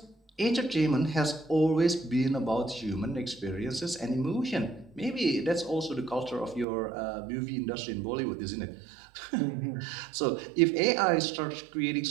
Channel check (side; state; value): left; drops out; at 6.7 s